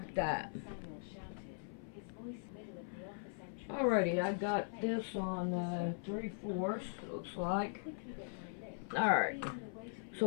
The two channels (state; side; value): silent; right; 51 dB below the other